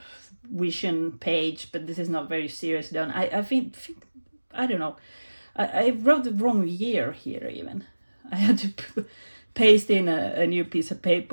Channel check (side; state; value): both; inverted; correlation -1.00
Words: vision page, but this is not very serious done. I think I don't know. I wrote the wrong year here even. I had to paste in a new piece of